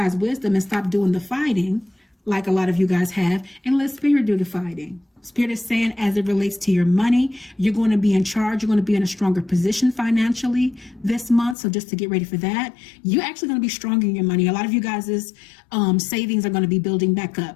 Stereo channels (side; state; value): right; drops out; at 11.6 s